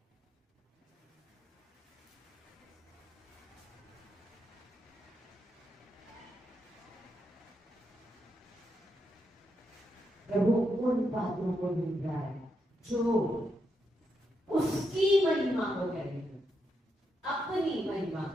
प्रभु उन बातों को ढूंढ रहा है जो उसकी महिमा को करेंगे, अपनी महिमा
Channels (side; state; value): both; normal; correlation 0.82